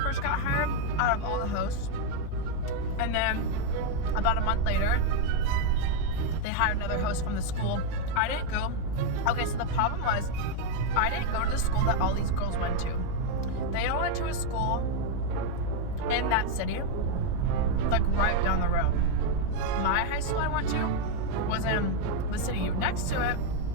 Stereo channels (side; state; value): both; different; correlation 0.01